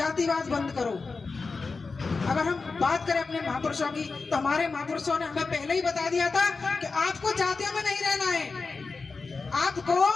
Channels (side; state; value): right; quieter; 4.3 dB